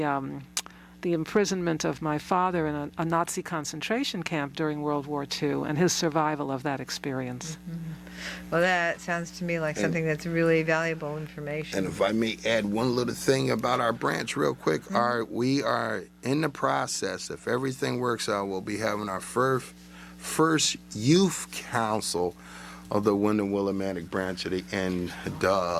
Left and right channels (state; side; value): identical; both; correlation 1.00